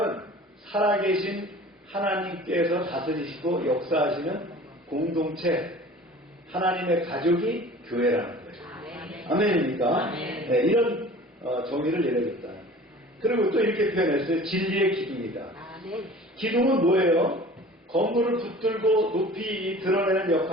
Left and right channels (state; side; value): normal; both; correlation 0.44